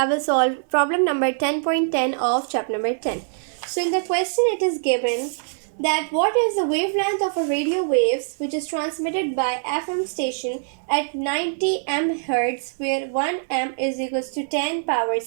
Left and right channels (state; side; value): silent; left; 63 dB below the other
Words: will solve problem number 10.10 of chapter number 10. So in the question it is given that what is the wavelength of a radio waves which is transmitted by FM station at 90 MHz where 1 M is equals to 10 power